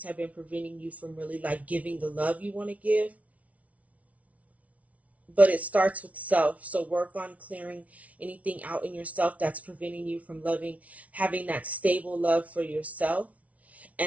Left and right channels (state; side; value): late; left; 0.067 ms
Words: have been preventing you from really like giving the love you want to give. But it starts with self. So work on clearing anything out in yourself that's preventing you from having that stable love for yourself.